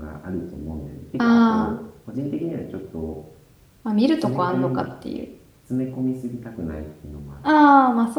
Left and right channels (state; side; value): identical; both; correlation 1.00